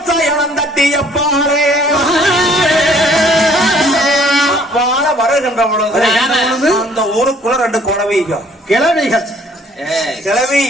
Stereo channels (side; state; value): both; normal; correlation 0.59